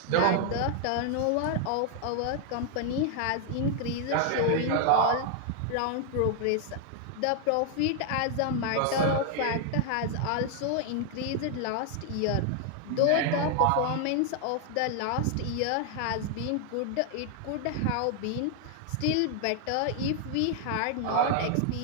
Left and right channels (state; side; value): different; both; correlation 0.00